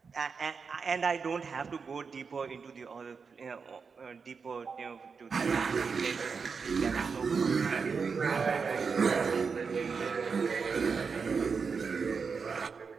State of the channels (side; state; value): left; quieter; 5.4 dB